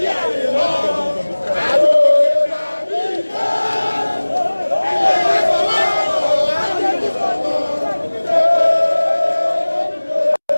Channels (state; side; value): inverted; both; correlation -1.00